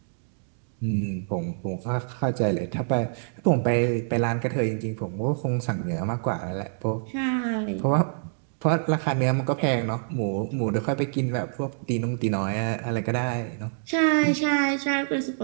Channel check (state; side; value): silent; left; digital silence